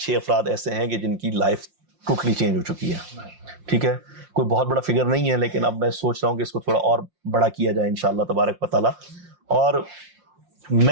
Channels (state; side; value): late; left; 5.7 ms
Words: افراد ایسے ہیں کہ جن کی لائف ٹوٹلی چینج ہو چکی ہے, ٹھیک ہے. کوئی بہت بڑا فگر نہیں ہے لیکن اب میں سوچ رہا ہوں کہ اس کو تھوڑا اور بڑا کیا جائے انشاءاللہ تبارک و تعالی. اور